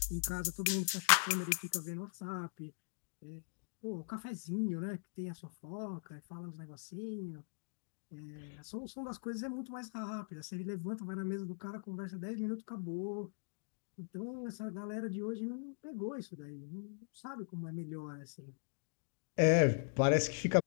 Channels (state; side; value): silent; right; digital silence